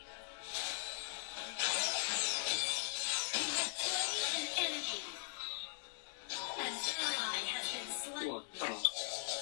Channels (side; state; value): right; silent; digital silence